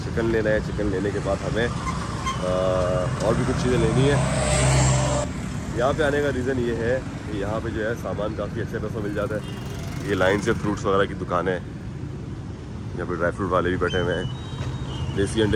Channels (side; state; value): both; identical; correlation 1.00